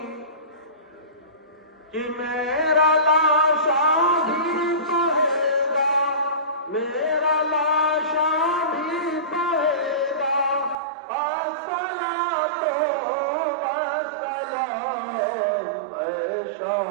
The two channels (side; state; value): left; drops out; at 10.8 s